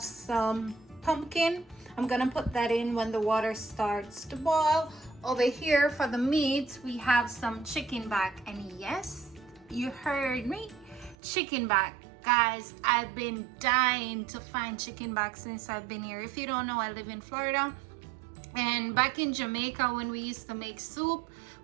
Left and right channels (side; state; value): left; drops out; at 11.2 s